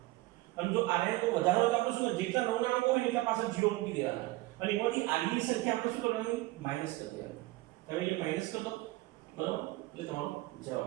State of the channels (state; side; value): quieter; left; 19.6 dB